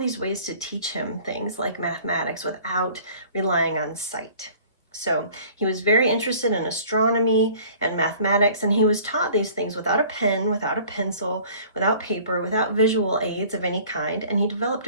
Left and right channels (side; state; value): both; inverted; correlation -0.50